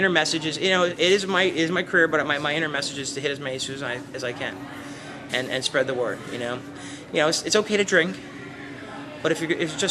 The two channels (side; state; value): both; identical; correlation 1.00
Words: message is, it is my career, but my inner message is to hit as many students as I can, and spread the word. It's okay to drink, but if you